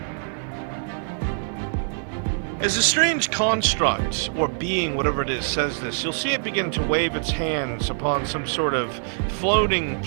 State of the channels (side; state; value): left; silent; digital silence